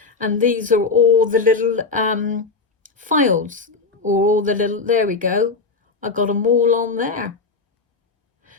and these are all the little files, or all the little, there we go. I got them all on there.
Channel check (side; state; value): right; quieter; 4.2 dB